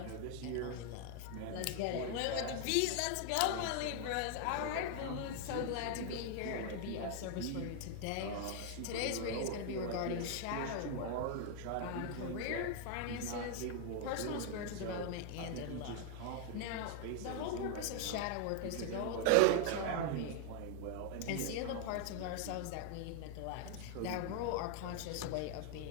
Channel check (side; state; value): both; different; correlation 0.00